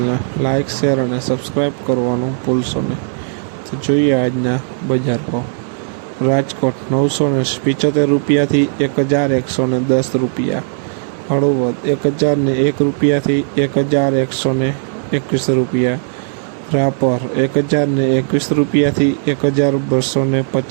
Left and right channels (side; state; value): left; silent; digital silence